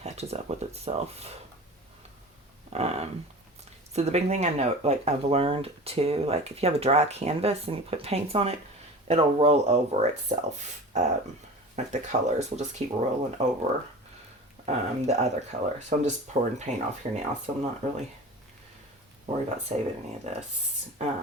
catches up with itself. So the big thing I know, like I've learned too, like if you have a dry canvas and you put paints on it, it'll roll over itself. Like the colors will just keep rolling over the other color. So I'm just pouring paint off here now, so I'm not really worried about saving any of this.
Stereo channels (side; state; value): both; normal; correlation 0.35